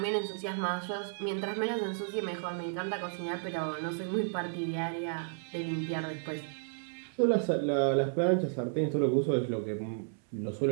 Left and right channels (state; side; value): silent; left; 56 dB below the other